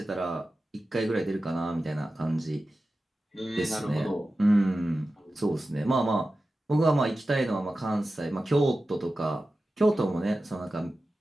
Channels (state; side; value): normal; both; correlation 0.94